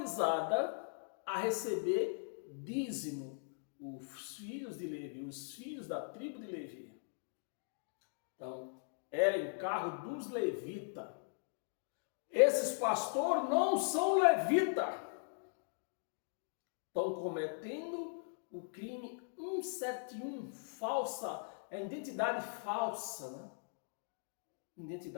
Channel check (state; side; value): silent; right; digital silence